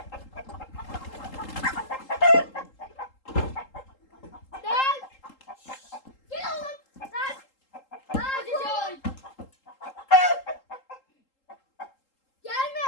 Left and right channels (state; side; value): late; right; 3.8 ms